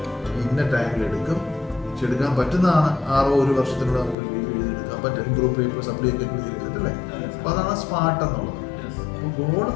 ഇന്ന ടൈമിൽ എടുക്കും. എടുക്കാൻ പറ്റുന്നതാണ്. 1 വർഷത്തിലൂടെ നമുക്ക് BBA എഴുതിയെടുക്കാൻ പറ്റും. ഗ്രൂപ്പ് പേപ്പർ സപ്ലൈ ഒക്കെ എഴുതിയെടുത്തിട്ടല്ലേ? അപ്പൊ അതാണ് സ്മാർട്ട് എന്നുള്ളത്. അപ്പൊ ഗോൾ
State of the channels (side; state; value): right; drops out; at 4.2 s